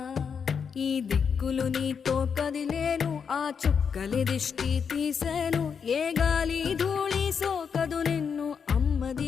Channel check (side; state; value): right; quieter; 6.5 dB